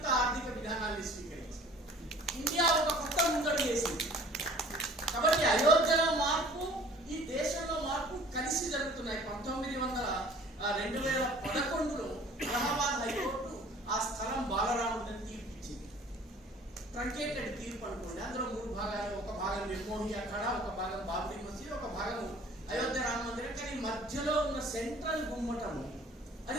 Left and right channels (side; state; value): both; normal; correlation 0.50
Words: ఆర్థిక విధానాన్ని స్వీకరించింది. ఇండియా ఒక కొత్త ముందడుగు వేసింది. కాబట్టి అయోధ్యలో మార్పు, ఈ దేశంలో మార్పు కలిసి జరుగుతున్నాయి. 2011లో అలహాబాద్ హైకోర్టు ఆ స్థలం బాలరాముడిని తీర్పిచ్చింది. ట్రంకేటెడ్ తీర్పు అనుకోండి. అందులో 3 భాగాలు. ఒక భాగం నిర్మోహి అఖాడా, ఒక భాగం బాబ్రీ మసీద్, ఒక భాగం అయోధ్య రామ మందిరం. కానీ మధ్యలో ఉన్న సెంట్రల్ గుమ్మటము